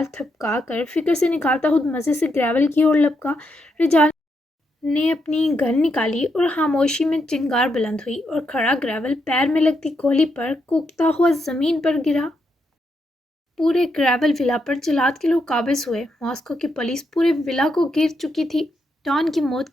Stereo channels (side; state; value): both; normal; correlation 0.81